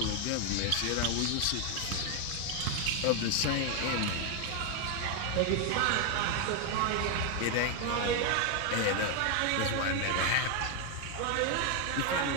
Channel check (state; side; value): different; both; correlation 0.01